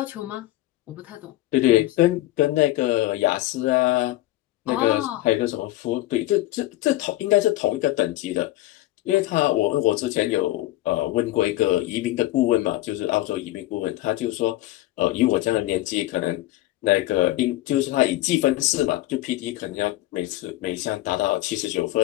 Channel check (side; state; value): right; quieter; 16.5 dB